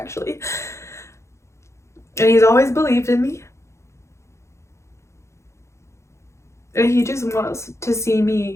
And he's always believed in me. And he just wants to see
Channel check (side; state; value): right; late; 0.14 ms